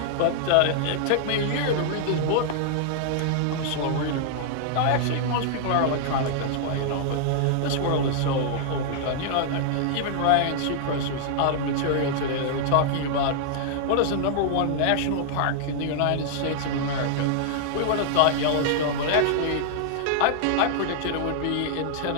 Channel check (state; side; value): different; both; correlation -0.01